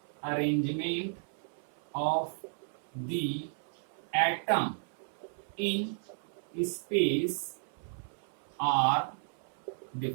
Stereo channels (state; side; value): silent; left; 55 dB below the other